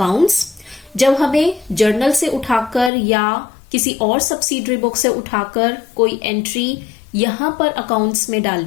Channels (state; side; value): drops out; right; at 2.9 s